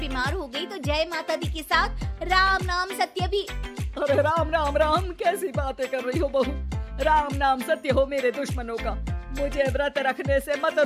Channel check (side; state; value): both; identical; correlation 1.00